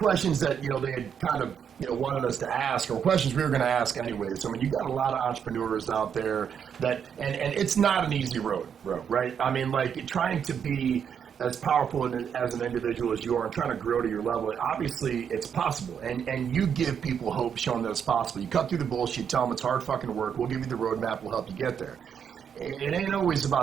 that, they had kind of, wanted us to ask, or questions we were going to ask anyways. I mean, you got a lot of entrepreneurs out there that, and it's not an easy road, right? I mean, like trying to be as powerful as an individual as you are and trying to grow to your level, obviously it's possible. And you give people hope, showing that it's possible. You cut through the bullshit, tell them it's hard fucking work. We'll give you the roadmap. We'll help you get there. It ain't always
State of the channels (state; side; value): quieter; left; 7.7 dB